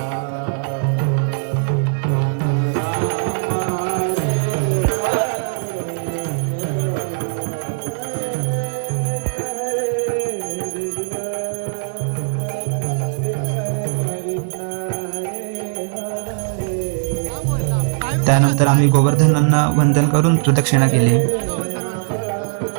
त्यानंतर आम्ही गोवर्धनांना वंदन करून प्रदक्षिणा केली.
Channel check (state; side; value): silent; left; 64 dB below the other